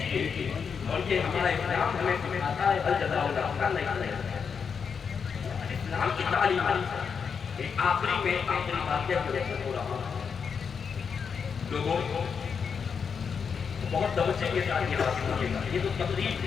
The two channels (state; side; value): quieter; right; 6.3 dB